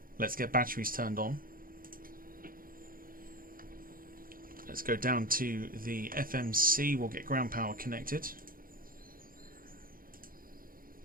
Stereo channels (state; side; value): late; left; 0.41 ms